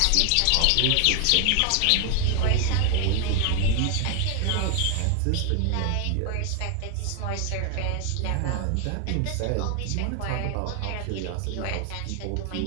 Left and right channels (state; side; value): different; both; correlation 0.00